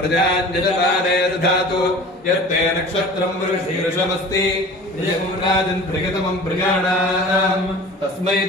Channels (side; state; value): both; normal; correlation 0.41